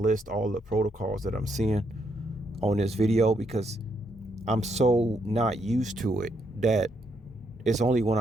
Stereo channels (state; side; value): normal; both; correlation 0.76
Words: list all the protocols that I'm seeing on this video because I'm so not used to it that it's only when